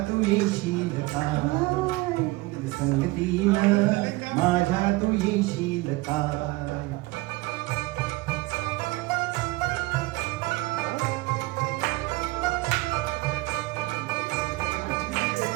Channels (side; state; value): left; quieter; 21.6 dB